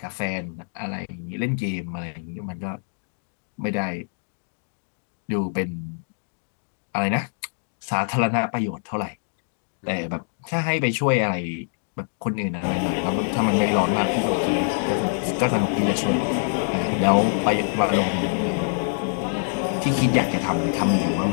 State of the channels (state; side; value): silent; right; digital silence